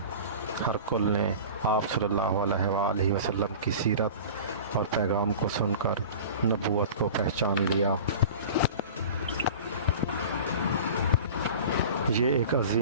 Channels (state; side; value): inverted; both; correlation -0.37